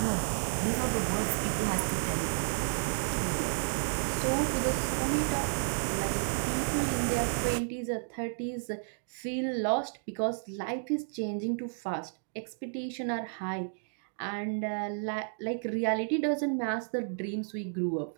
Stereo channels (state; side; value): silent; left; digital silence